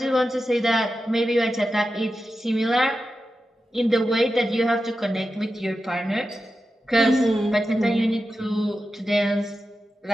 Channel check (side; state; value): both; normal; correlation 0.91